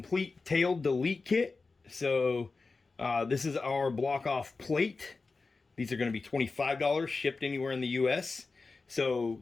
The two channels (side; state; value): right; quieter; 4.0 dB